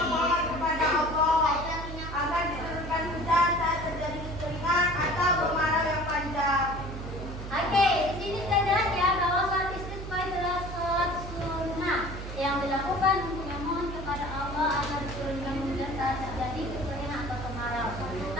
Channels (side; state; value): right; noise; hum, 8 dB below the sound